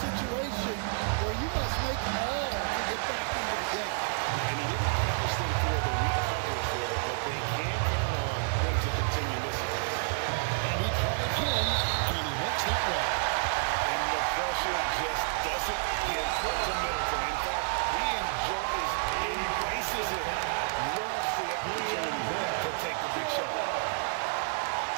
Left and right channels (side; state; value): left; silent; digital silence